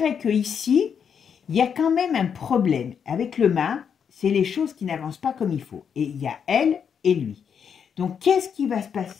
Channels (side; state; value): right; quieter; 7.3 dB